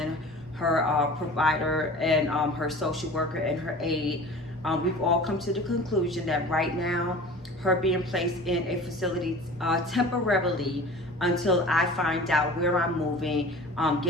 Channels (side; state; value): both; normal; correlation 0.40